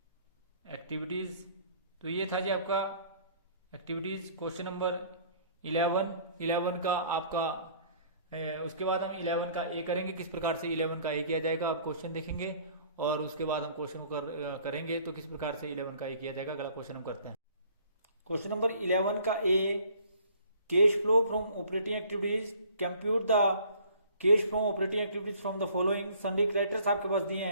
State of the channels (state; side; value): inverted; both; correlation -0.55